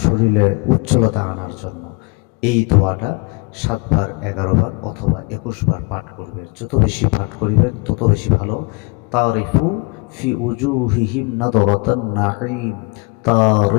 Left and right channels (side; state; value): right; quieter; 27.9 dB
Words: শরীরে উজ্জ্বলতা আনার জন্য এই দোয়াটা ৭ বার, ১১ বার অথবা ২১ বার পাঠ করবেন। যত বেশি পাঠ করিবেন তত বেশি ভালো। তারিফু ফি উজুহিহিম নাদরাতান নাঈম,